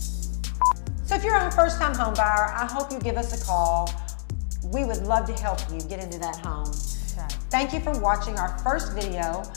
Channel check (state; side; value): silent; right; digital silence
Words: So if you're a first-time home buyer, I hope you give us a call. We would love to help you get into that home. Okay. Thank you for watching our first video